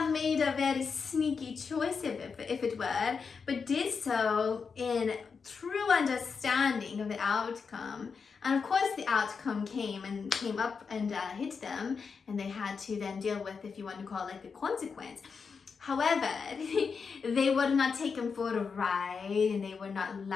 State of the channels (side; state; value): right; quieter; 5.5 dB